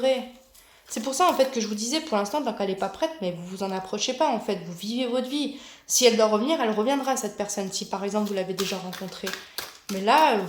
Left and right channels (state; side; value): identical; both; correlation 1.00